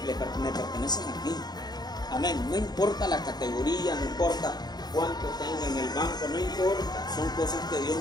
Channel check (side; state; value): right; late; 0.20 ms